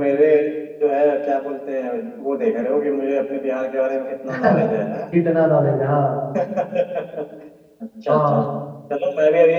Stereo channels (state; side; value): identical; both; correlation 1.00